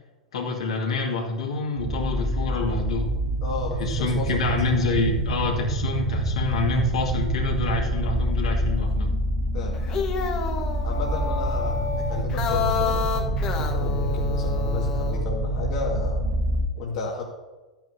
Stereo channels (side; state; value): both; normal; correlation 0.31